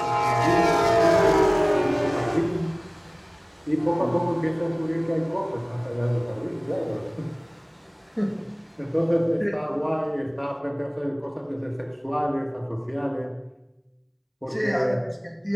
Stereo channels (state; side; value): identical; both; correlation 1.00